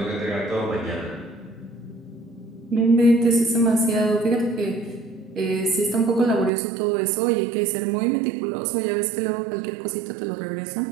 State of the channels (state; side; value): drops out; left; at 6.5 s